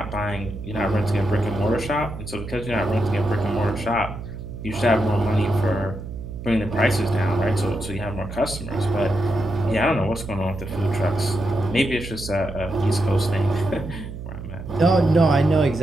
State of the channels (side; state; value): right; noise; hum, 10 dB below the sound